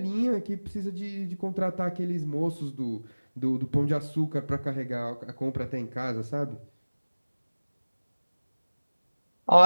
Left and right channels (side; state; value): both; inverted; correlation -1.00